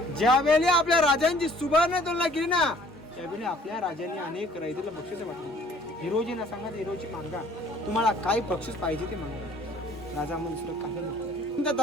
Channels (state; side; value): normal; both; correlation 0.56